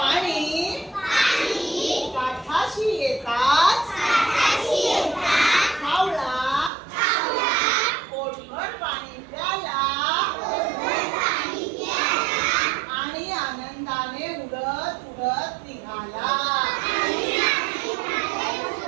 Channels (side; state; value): left; drops out; at 6.7 s